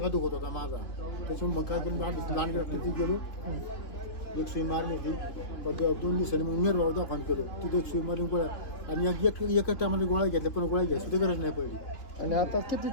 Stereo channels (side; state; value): right; late; 2.9 ms